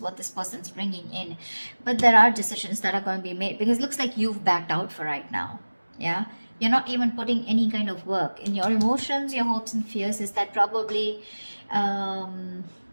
this person's bringing in. But there are decisions that are going to be made, because it looks like you've backed out for right now, yeah? You're not even putting any kind of work in your emotions, your hopes and fears. Is that probably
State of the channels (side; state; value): both; inverted; correlation -1.00